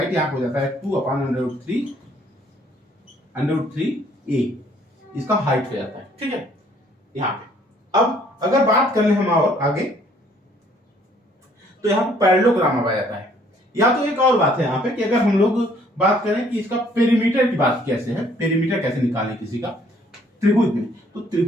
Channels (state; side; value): normal; both; correlation 0.62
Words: यहाँ हो जाता है 2/√3 इसका हाइट हो जाता है, ठीक है। यहाँ पे अब अगर बात कर ले हम और आगे, तो यहाँ पे पैरेललोग्राम आ जाता है। या तो एक और बात है यहाँ पे कि अगर हम लोग बात करें कि इसका पेरीमीटर की बात कैसे है, पेरीमीटर कैसे निकालें किसी का त्रिभुज में, तो